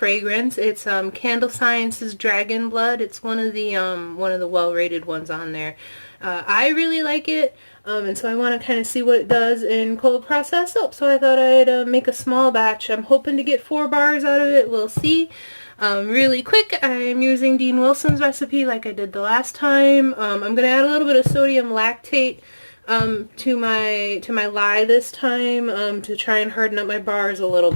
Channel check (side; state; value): both; inverted; correlation -1.00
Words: It's Candle Science's Dragon Blood. It's one of the well-rated ones on there. I really like it, and so I want to kind of see what it does in cold process soap. So I thought I'd make a small batch. I'm hoping to get 4 bars out of it. We'll see. Really quick, I'm using Dean Wilson's recipe like I did the last time. I'm going to add a little bit of sodium lactate to my lye this time to try and harden up my bars a little